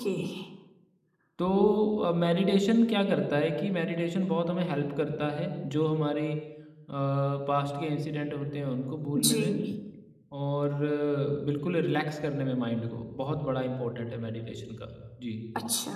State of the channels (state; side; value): identical; both; correlation 1.00